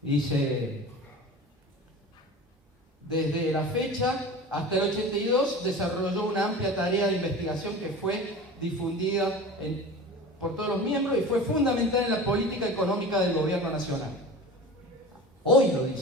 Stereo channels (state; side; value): normal; both; correlation 0.35